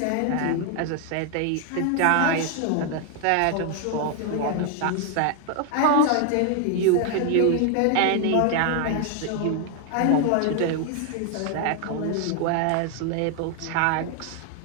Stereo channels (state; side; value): different; both; correlation 0.00